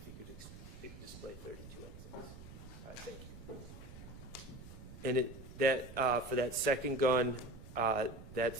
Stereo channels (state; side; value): noise; right; rumble, 14 dB below the sound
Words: you could display 32XX. All right, thank you. And for that second gun,